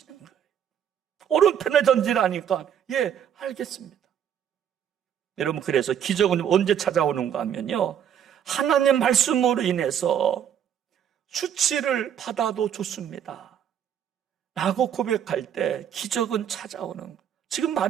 거예요. 오른편에 던지라니까 알겠습니다. 여러분 그래서 기적은 언제 찾아오는가 하면요, 하나님 말씀으로 인해서 수치를 받아도 좋습니다 라고 고백할 때 기적은 찾아오는 거예요. 지금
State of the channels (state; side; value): quieter; left; 9.1 dB